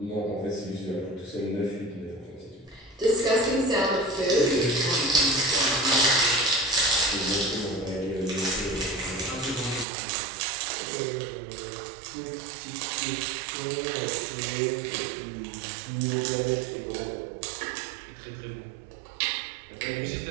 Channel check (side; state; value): left; drops out; at 9.9 s